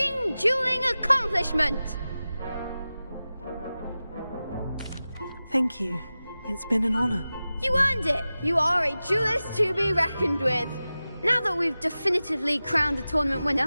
dueling accomplishment. Thank you. It's been an honor. You earned it. You are a duelist to be reckoned with. Now that we've definitively crowned the tournament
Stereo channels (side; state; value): both; inverted; correlation -0.95